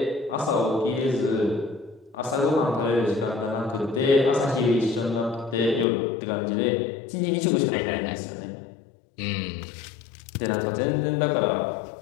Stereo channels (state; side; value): drops out; right; at 5.9 s